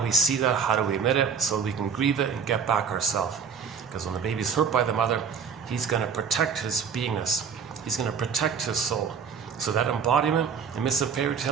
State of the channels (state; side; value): quieter; left; 6.5 dB